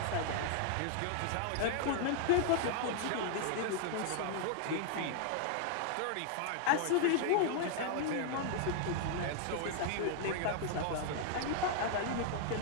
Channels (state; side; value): different; both; correlation 0.00